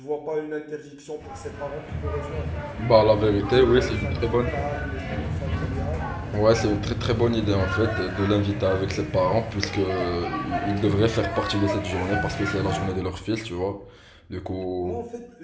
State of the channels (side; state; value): both; identical; correlation 1.00